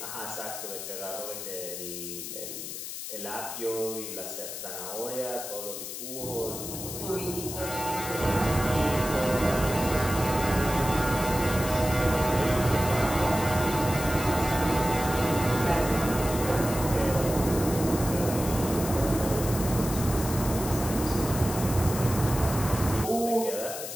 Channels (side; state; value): left; noise; hiss, 8 dB below the sound